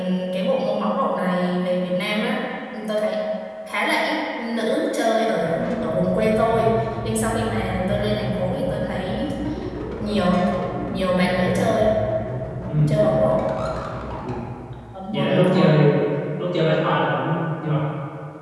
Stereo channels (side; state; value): both; identical; correlation 1.00